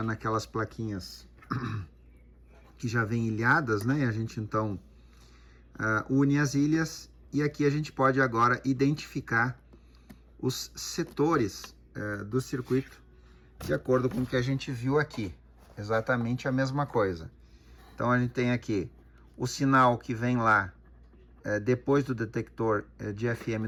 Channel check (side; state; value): both; identical; correlation 1.00